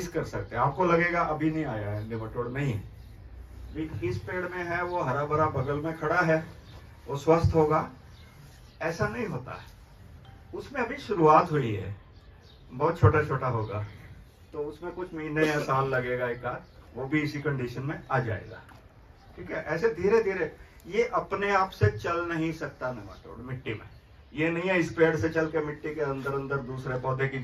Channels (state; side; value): identical; both; correlation 1.00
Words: कर सकते हैं। आपको लगेगा अभी नहीं आया है नेमाटोड, नहीं, इस पेड़ में है, वो हरा भरा बगल में खड़ा है, वो स्वस्थ होगा, ऐसा नहीं होता है। उसमें अभी शुरुआत हुई है, बहुत छोटा छोटा होगा, तो उसमें कुछ महीने या साल लगेगा एक आध, वो भी इसी कंडीशन में आ जाएगा, ठीक है। ऐसे धीरे धीरे, ये अपने आप से चल नहीं सकता नेमाटोड मिट्टी में, ये नहीं है इस पेड़ से चल के मिट्टी के अंदर अंदर दूसरे पौधे की